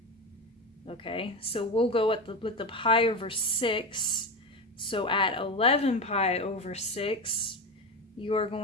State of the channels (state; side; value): normal; both; correlation 0.20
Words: Okay, so we'll go with the pi over 6. So at 11 pi over 6, you are